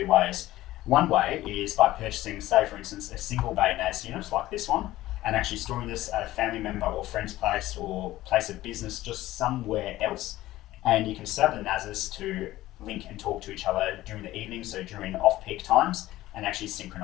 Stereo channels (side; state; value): right; quieter; 16.0 dB